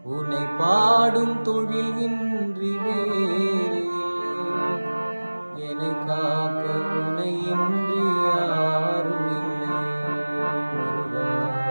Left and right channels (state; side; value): inverted; both; correlation -1.00